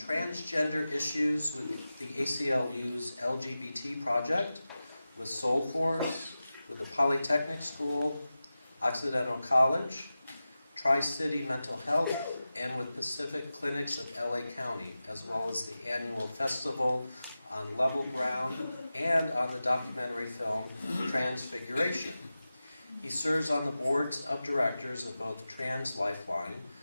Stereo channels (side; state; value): both; inverted; correlation -0.94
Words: issues with the ACLU's LGBT project, with Soul Force, with the Polytechnic School, Occidental College, Tri-City Mental Health, and with Pacific Clinics of LA County, as well as the annual festival on Level Ground and on the documentary film Transfiguration. He serves on the boards of directors of both Trans Lifeline,